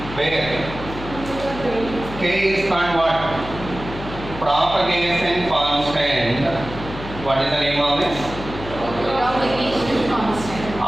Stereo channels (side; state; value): left; noise; hum, 11 dB below the sound